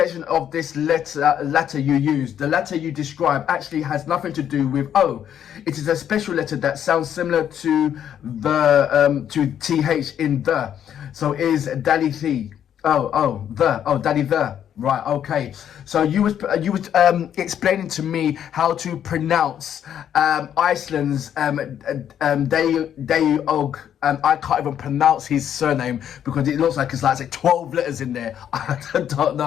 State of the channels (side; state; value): right; quieter; 9.6 dB